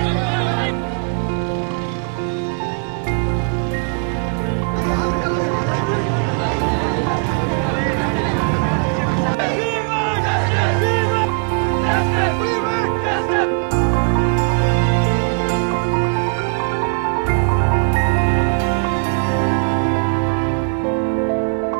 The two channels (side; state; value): left; quieter; 39.5 dB